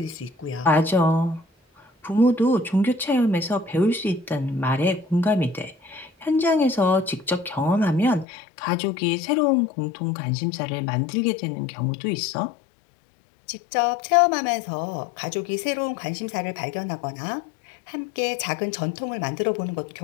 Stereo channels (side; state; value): right; drops out; at 8.2 s